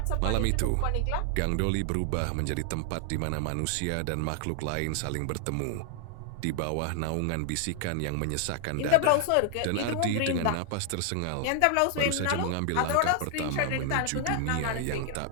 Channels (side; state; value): both; different; correlation 0.00